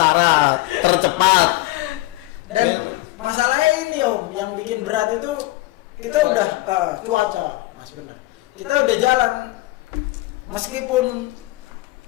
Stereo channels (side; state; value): right; quieter; 19.1 dB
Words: tercepat. Dan masalahnya ini om, yang bikin berat itu kita udah cuaca, mas benar. Kita udah jalan, meskipun